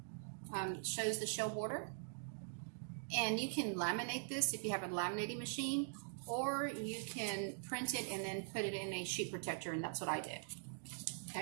Shows the shell border. And you can laminate this if you have a laminating machine, or you can print it and then put it in a sheet protector, and that's what I did.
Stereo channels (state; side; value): silent; left; digital silence